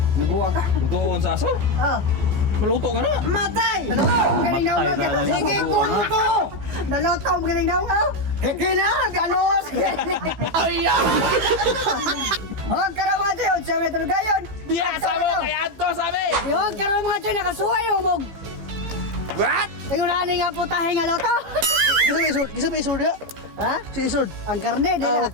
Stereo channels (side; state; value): left; late; 15 ms